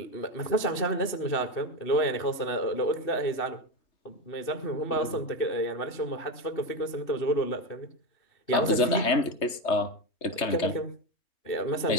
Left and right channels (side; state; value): right; late; 3.3 ms